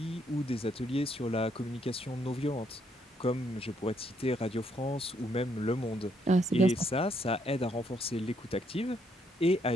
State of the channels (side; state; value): both; normal; correlation 0.72